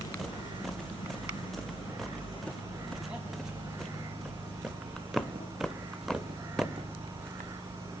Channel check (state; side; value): normal; both; correlation 0.81